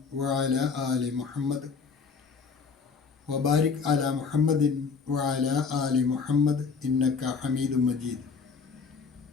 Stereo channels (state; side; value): quieter; right; 5.3 dB